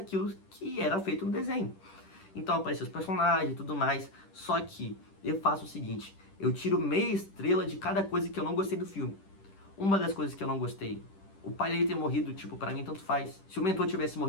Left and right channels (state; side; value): late; right; 10 ms